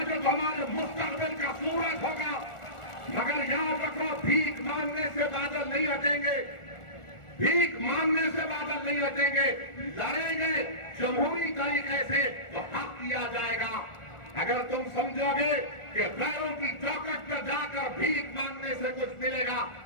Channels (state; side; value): late; right; 1.4 ms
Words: जो हमारे मुस्तकबिल का सूरज होगा, मगर याद रखो भीख मांगने से बादल नहीं हटेंगे, भीख मांगने से बादल नहीं हटेंगे। लड़ेंगे जमहूरी तरीके से तो हक दिया जाएगा। अगर तुम समझोगे कि गैरों की चौकट पर जाकर भीख मांगने से कुछ मिलेगा,